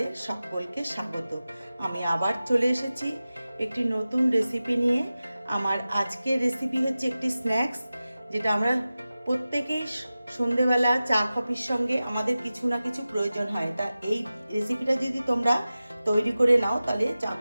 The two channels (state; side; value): inverted; both; correlation -0.95